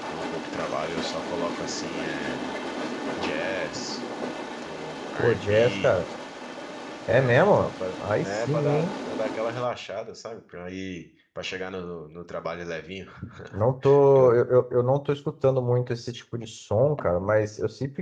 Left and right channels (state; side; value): identical; both; correlation 1.00